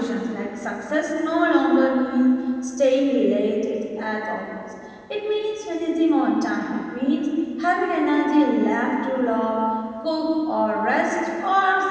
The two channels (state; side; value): identical; both; correlation 1.00